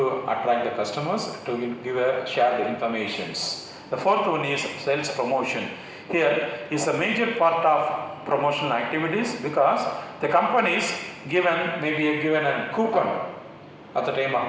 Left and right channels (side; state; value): both; identical; correlation 1.00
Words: attract the customers, to share the informations. The fourth one is sales promotion. Here is a major part of promotional activities, because the companies may be given a coupon at the time